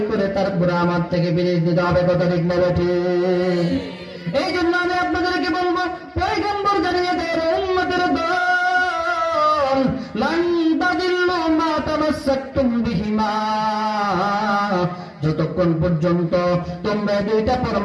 করে তারপরে আমার থেকে পিরিজ নিতে হবে। কথা ঠিক না ঠিক? এই জন্য আমি আপনাদেরকে বলবো, পয়গম্বর জানিয়ে দেয় উম্মতের দল, লান তাদিল্লু মা তামাসসাকতুম বিহিমা, যতক্ষণ পর্যন্ত তোমরা দুইটা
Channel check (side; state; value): both; identical; correlation 1.00